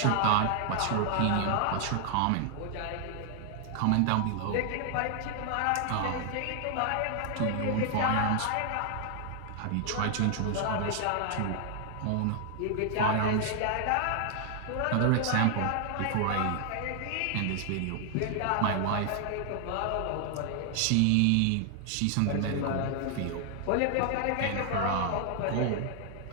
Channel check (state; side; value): different; both; correlation 0.00